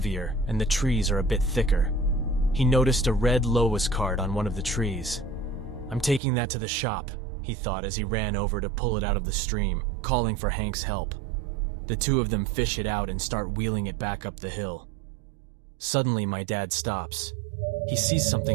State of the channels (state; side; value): drops out; left; at 6.2 s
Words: and the trees are a bit thicker. He noticed a red Lois card on one of the trees. "I'm taking that to the shop," he thought as he ran over to pull it out of the stream, calling for Hank's help. The two of them fish it out and start wheeling it back up the hill. Suddenly, my dad stops. He sees